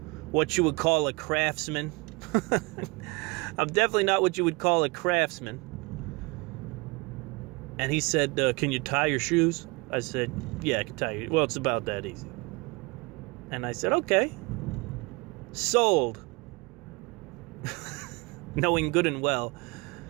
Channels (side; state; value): left; quieter; 26.2 dB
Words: you would call a craftsman. I'm definitely not what you would call a craftsman. And he said, can you tie your shoes? I said, yeah, I can tie you. Well, it's about that easy. And I said, okay. Sold. Knowing good and well,